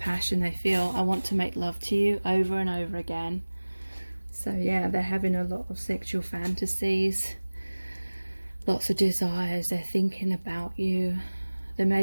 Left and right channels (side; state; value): both; inverted; correlation -1.00